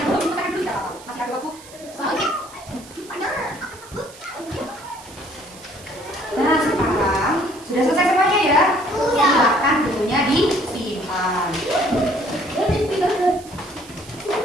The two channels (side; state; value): right; noise; hiss, 20 dB below the sound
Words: kita dulu ya, masih ada waktu. Nah, sekarang sudah selesai semuanya ya. Silakan bukunya disimpan.